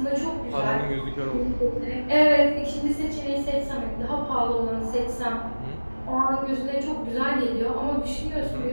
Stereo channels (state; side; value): inverted; both; correlation -1.00